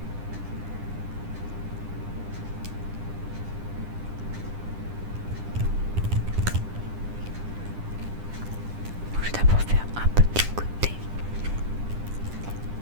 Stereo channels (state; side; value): late; left; 9.9 ms